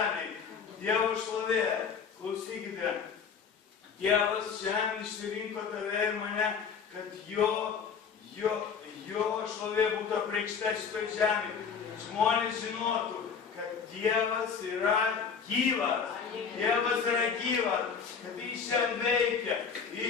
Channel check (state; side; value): quieter; right; 6.3 dB